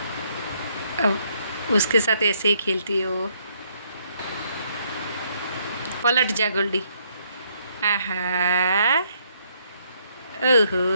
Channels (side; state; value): both; inverted; correlation -0.71